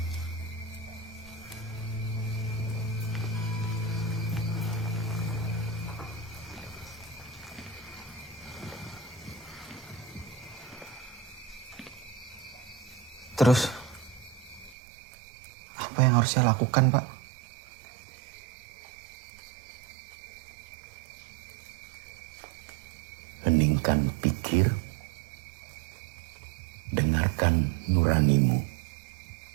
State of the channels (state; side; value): drops out; left; at 14.8 s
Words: Terus, apa yang harus saya lakukan, Pak? Heningkan pikir, dengarkan nuranimu.